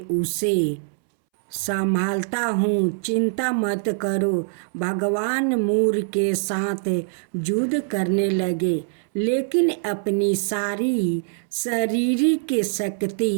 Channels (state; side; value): silent; left; 63 dB below the other